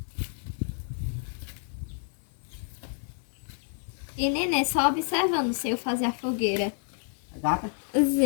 E neném só observando se eu fazer a fogueira. A gata.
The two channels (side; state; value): right; silent; 58 dB below the other